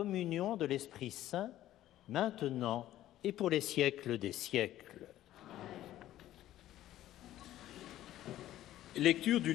de l'Esprit Saint, maintenant et pour les siècles des siècles. Lecture du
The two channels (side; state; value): right; quieter; 13.6 dB